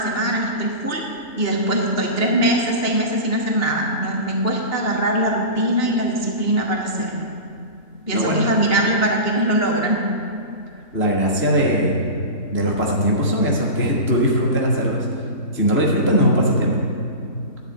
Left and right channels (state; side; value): late; right; 2.9 ms